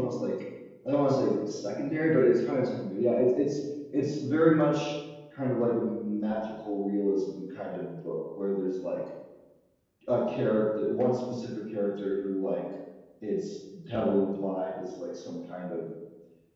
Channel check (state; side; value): identical; both; correlation 1.00